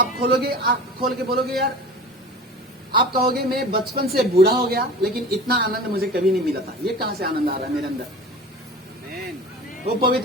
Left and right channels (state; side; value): normal; both; correlation 0.37